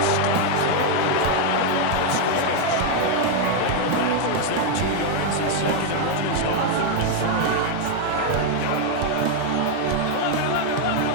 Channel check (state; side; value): different; both; correlation 0.01